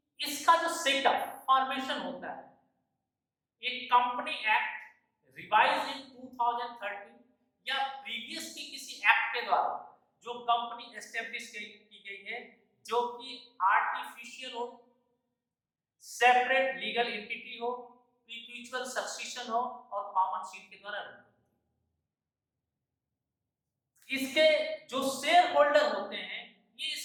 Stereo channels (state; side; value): identical; both; correlation 1.00